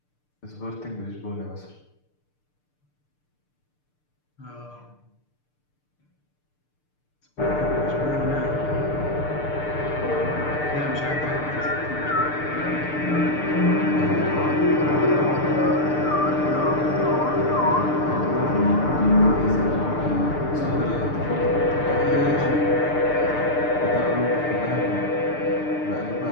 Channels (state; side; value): late; right; 6.7 ms